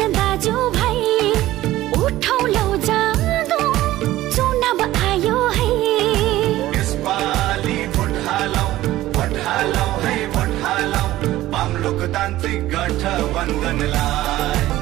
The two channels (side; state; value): left; quieter; 15.6 dB